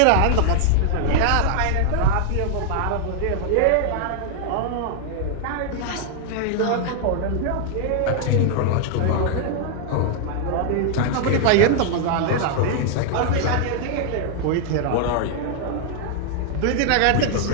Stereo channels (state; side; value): different; both; correlation 0.00